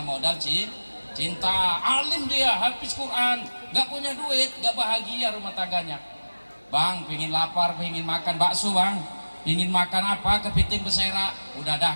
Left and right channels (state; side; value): inverted; both; correlation -1.00